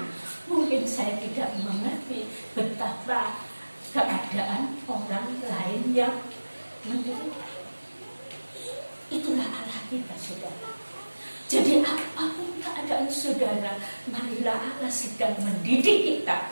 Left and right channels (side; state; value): both; inverted; correlation -1.00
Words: mungkin saya tidak mengerti betapa keadaan orang lain yang menderita. Itulah Allah kita, saudara. Jadi apapun keadaan saudara, marilah Allah sedang mendidik kita